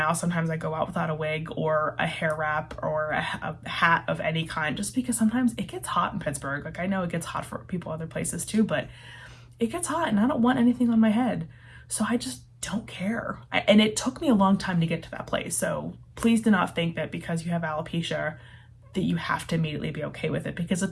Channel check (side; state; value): both; identical; correlation 1.00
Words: sometimes I go out without a wig or a hair wrap or a hat of any kind, just because sometimes it gets hot in Pittsburgh. Like, I know it gets hot for people other places too, but it gets hot and I don't want anything on my head. So I just don't care. And it took me a long time to get to that place. So please do not think that because you have alopecia that you have to immediately be okay with it, because it